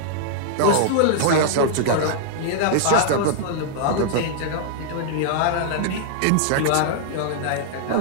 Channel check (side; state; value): both; different; correlation -0.01